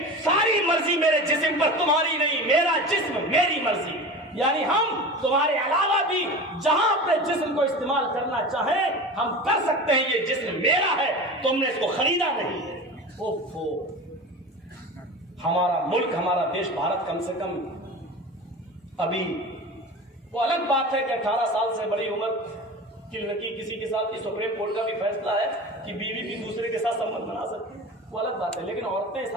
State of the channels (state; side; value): normal; both; correlation 0.32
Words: सारी मर्जी मेरे जिस्म पर तुम्हारी नहीं, मेरा जिस्म मेरी मर्जी। यानी हम तुम्हारे अलावा भी जहां अपने जिस्म को इस्तेमाल करना चाहें हम कर सकते हैं। ये जिस्म मेरा है, तुमने इसको खरीदा नहीं है। ओफो, हमारा मुल्क, हमारा देश भारत कम से कम अभी, वो अलग बात है कि 18 साल से बड़ी उम्र की लड़की किसी के साथ, सुप्रीम कोर्ट का भी फैसला है कि बीवी भी दूसरे के साथ संबंध बना सकती है, वो अलग बात है। लेकिन औरतें इस